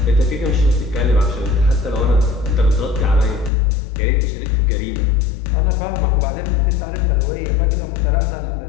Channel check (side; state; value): right; drops out; at 3.5 s